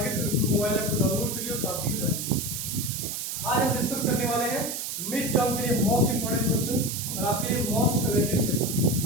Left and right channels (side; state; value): right; noise; hiss, 4 dB below the sound